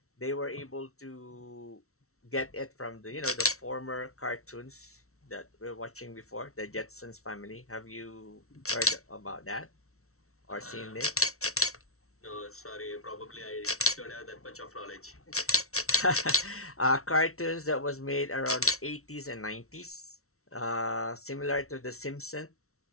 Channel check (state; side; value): late; right; 0.63 ms